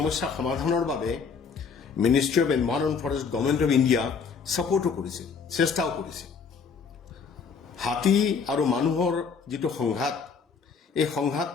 সমাধানৰ বাবে ministry of environment forest government of India ছাপোৰ্টো কৰিছে, চেষ্টাও কৰিছে। হাতী আৰু মানুহৰ যিটো সংঘাত, এই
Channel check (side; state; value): right; quieter; 5.6 dB